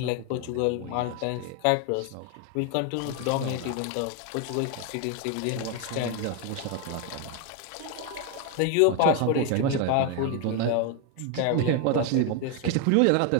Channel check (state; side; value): different; both; correlation 0.01